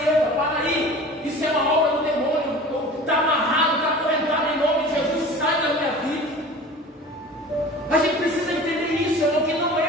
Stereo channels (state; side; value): normal; both; correlation 0.39